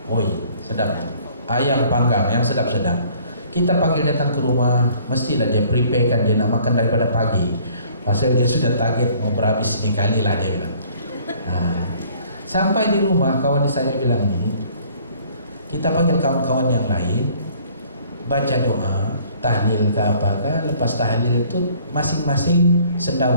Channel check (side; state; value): both; inverted; correlation -0.56